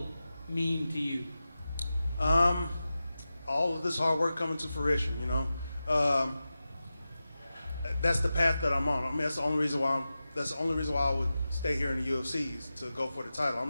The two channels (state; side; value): inverted; both; correlation -0.93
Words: mean to you? All of this hard work coming to fruition, you know. That's the path that I'm on. I mean, that's the only reason why I would stay here in the UFC is to go for the title.